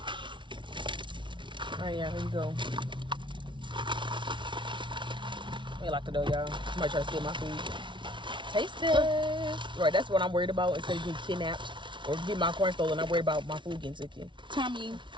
Alright, yeah, here you go. Let me lock the door, y'all. Somebody try to steal my food. Taste test. Right, that's what I'm worried about. Instead of getting kidnapped or getting my corn stolen, I'm worried about my food getting taken. Tommy.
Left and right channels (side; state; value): left; late; 0.24 ms